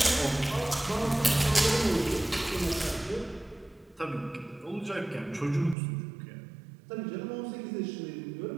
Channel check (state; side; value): drops out; left; at 5.8 s